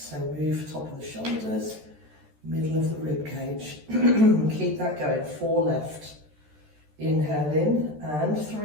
So move top of the shoulders, middle of the rib cage. Keep that going. 4 left. Inhale in and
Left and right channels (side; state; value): left; late; 13 ms